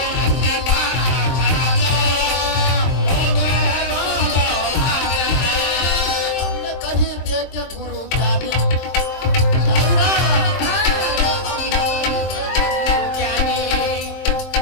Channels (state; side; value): late; right; 23 ms